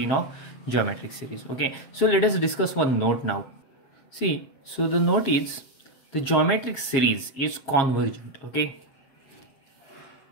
of geometric series. Okay, so let us discuss one note now. See, so the note is the geometric series is convergent. Okay,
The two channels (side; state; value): right; late; 7.4 ms